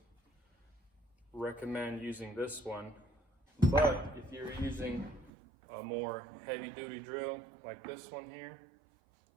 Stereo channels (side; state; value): left; drops out; at 5.3 s